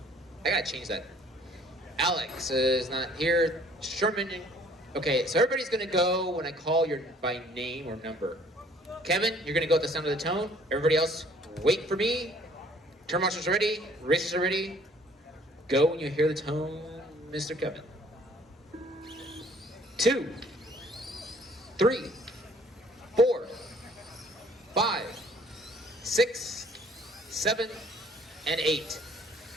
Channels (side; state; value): both; normal; correlation 0.57